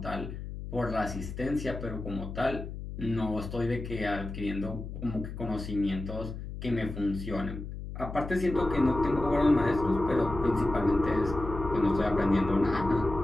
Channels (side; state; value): left; noise; hum, 8 dB below the sound